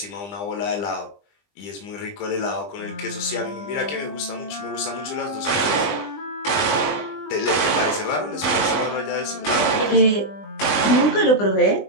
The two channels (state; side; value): late; right; 20 ms